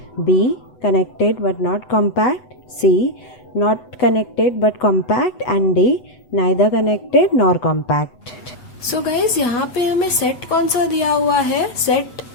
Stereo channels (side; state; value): right; late; 8.0 ms